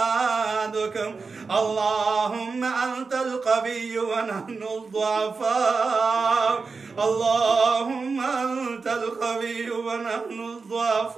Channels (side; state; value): left; quieter; 4.5 dB